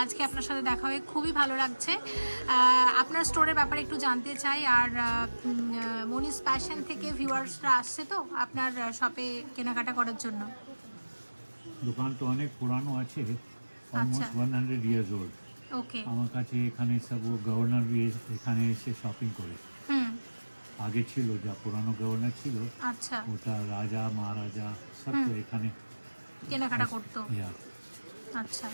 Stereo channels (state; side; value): inverted; both; correlation -1.00